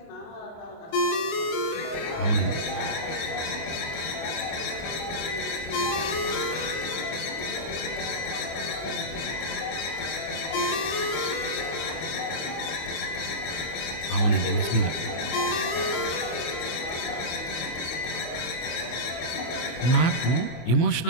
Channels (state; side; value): late; right; 25 ms